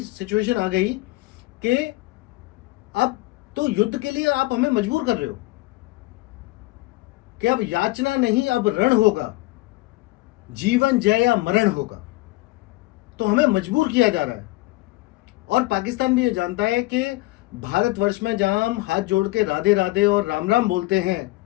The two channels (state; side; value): quieter; right; 20.7 dB